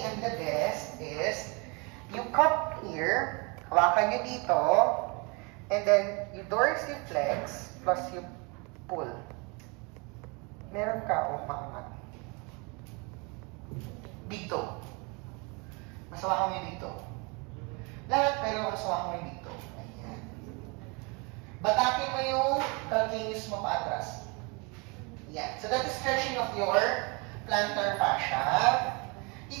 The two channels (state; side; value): quieter; left; 30.5 dB